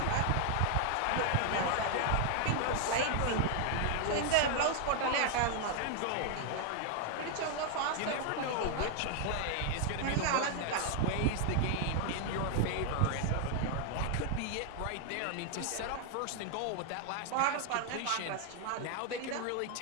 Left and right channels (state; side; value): different; both; correlation 0.00